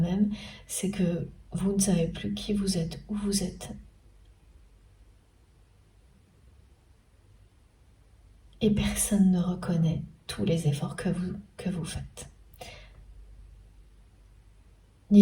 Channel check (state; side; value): identical; both; correlation 1.00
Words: c'est que vous ne savez plus qui vous êtes, où vous êtes. Et personne ne reconnaît tous les efforts que vous faites.